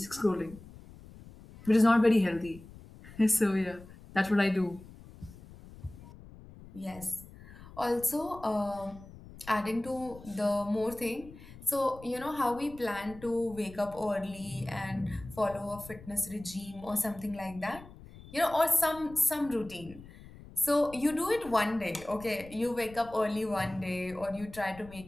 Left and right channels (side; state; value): left; noise; rumble, 18 dB below the sound